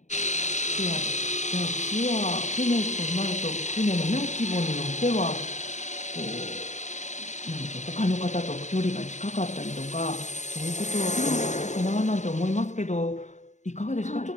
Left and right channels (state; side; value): late; right; 0.34 ms